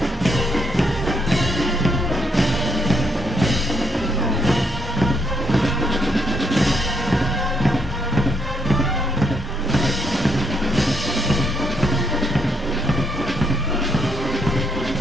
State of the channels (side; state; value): both; normal; correlation 0.74